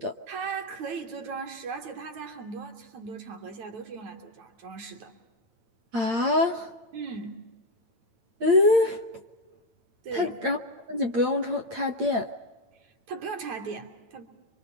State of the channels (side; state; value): left; late; 8.8 ms